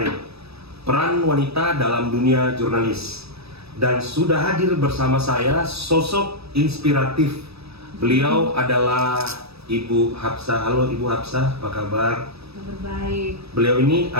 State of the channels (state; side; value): late; left; 0.78 ms